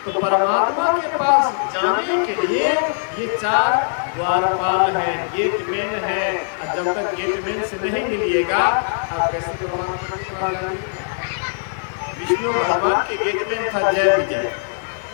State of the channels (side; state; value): right; silent; digital silence